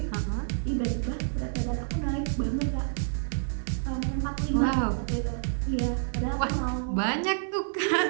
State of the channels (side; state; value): left; silent; digital silence